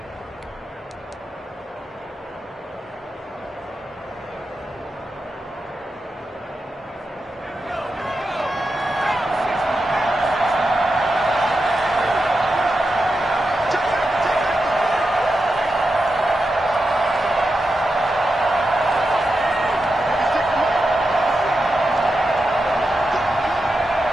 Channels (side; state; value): both; normal; correlation 0.89